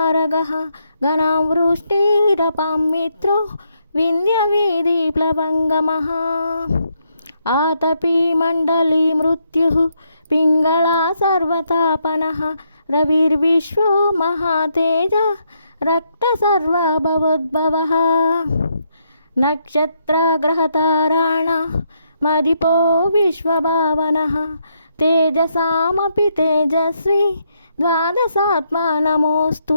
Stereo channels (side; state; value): both; inverted; correlation -0.77